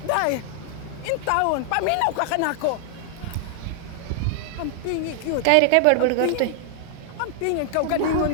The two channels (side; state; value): both; different; correlation 0.00